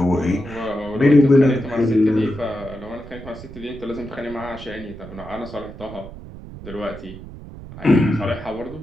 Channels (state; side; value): noise; right; rumble, 14 dB below the sound